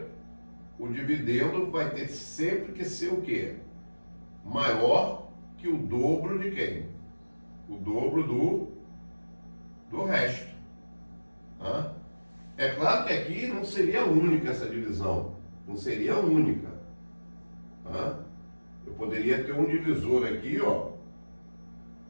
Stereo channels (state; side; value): inverted; both; correlation -1.00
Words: o dividendo vai ter sempre que ser o quê? Maior que o dobro de quem? O dobro do resto. É claro que aqui não seria única essa divisão. Não seria única. Eu poderia ter um divisor aqui, ó.